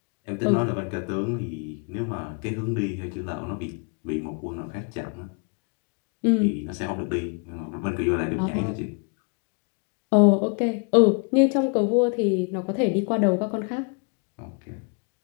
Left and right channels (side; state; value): right; quieter; 38.6 dB